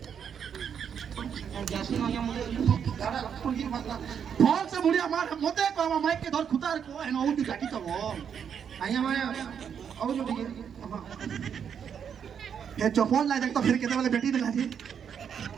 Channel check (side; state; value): left; quieter; 7.7 dB